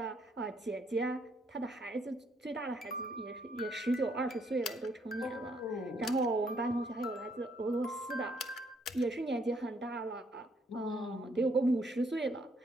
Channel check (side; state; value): both; normal; correlation 0.70